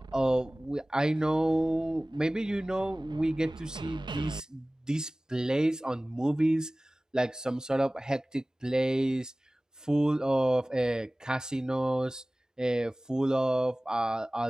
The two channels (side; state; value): both; normal; correlation 0.98